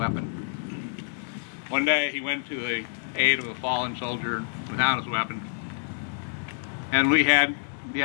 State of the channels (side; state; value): right; silent; digital silence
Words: One day he went to the aid of a fallen soldier without his weapon, and we had